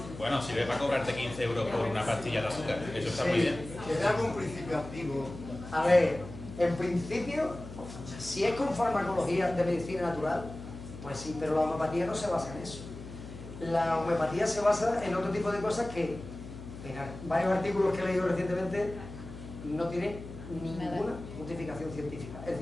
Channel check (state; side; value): noise; left; hum, 12 dB below the sound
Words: Bueno, sirve para cobrarte 15 euros por una pastilla de azúcar. Eso está muy bien. ¿Tiene algún principio activo? A ver, en principio, si es con farmacología de medicina natural, pues sí, pero la homeopatía no se basa en eso. La homeopatía se basa en otro tipo de cosas que, en varios artículos que he leído recientemente, no tiene ninguna justificación científica. Es